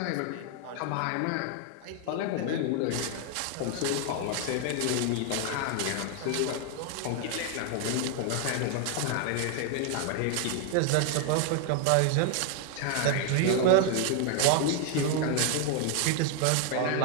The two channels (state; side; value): different; both; correlation 0.00